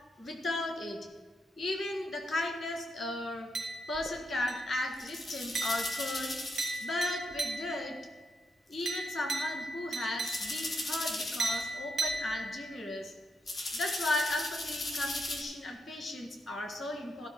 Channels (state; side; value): normal; both; correlation 0.81